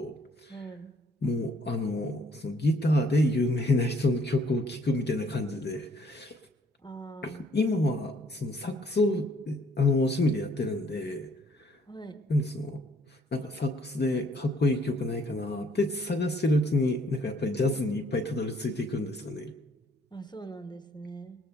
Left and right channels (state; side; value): normal; both; correlation 0.63